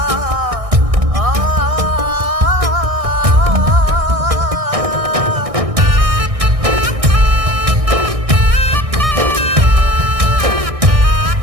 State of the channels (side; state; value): left; late; 1.6 ms